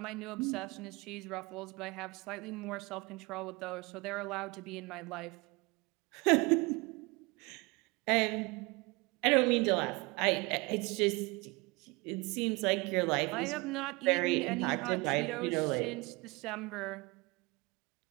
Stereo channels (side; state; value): left; quieter; 25.8 dB